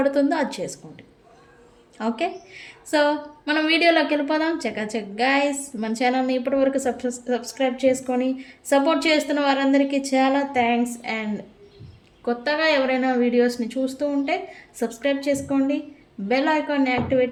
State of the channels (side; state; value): both; identical; correlation 1.00